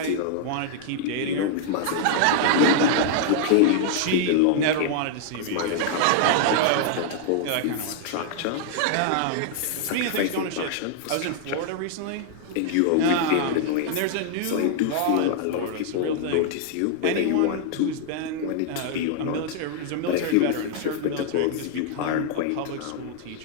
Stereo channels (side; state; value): both; different; correlation -0.01